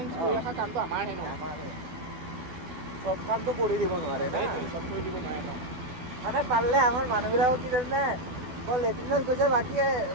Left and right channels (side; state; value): left; late; 12 ms